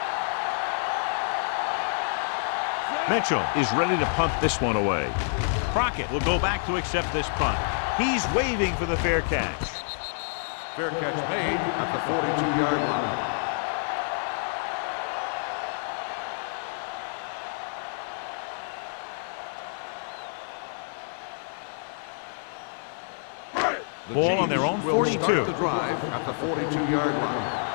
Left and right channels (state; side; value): silent; right; 57 dB below the other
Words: Mitchell is ready to punt this one away. Crockett will go back to accept this punt. He's waving for the fair catch. Fair catch made at the 42-yard line. Ball on their own 42. Start the drive at the 42-yard line.